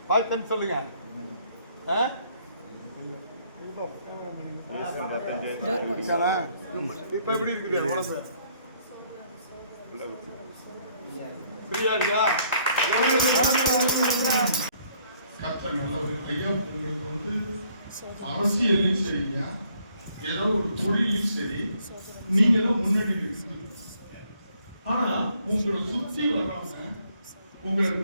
பார்த்து சொல்லுங்க. இப்ப எப்படி இருக்குது உடம்பு? சரியா இருக்கா? ஐயா உங்களுக்கு வந்து அரசியல்லையும் சரியா ஏதோ ஒரு தொழிலையும் சரி நீங்க தான் முன்னாடி இருக்கு. ஆனா உங்களை சுற்றி வர்றவங்க உங்களை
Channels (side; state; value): both; inverted; correlation -0.66